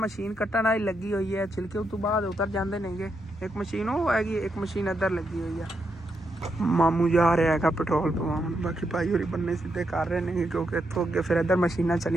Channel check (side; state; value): both; normal; correlation 0.81